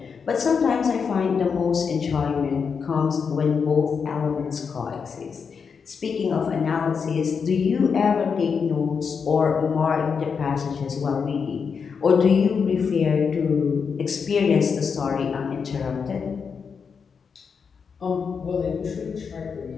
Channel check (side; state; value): right; quieter; 6.0 dB